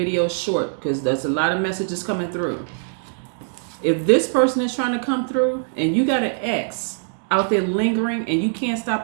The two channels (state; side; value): silent; left; digital silence